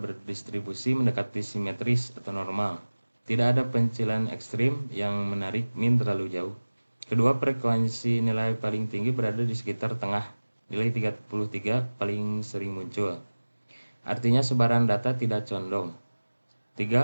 mendekati simetris atau normal. Tidak ada pencilan ekstrim yang menarik mean terlalu jauh. Kedua frekuensi nilai paling tinggi berada di sekitar tengah. Nilai 33 paling sering muncul. Artinya sebaran data tidak condong.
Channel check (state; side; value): inverted; both; correlation -1.00